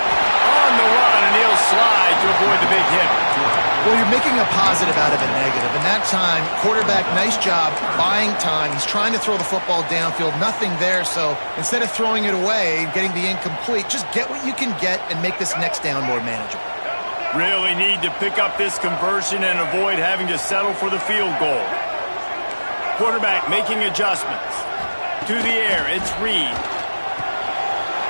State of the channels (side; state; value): both; inverted; correlation -1.00